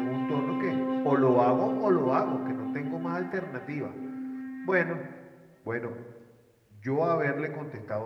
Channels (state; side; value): identical; both; correlation 1.00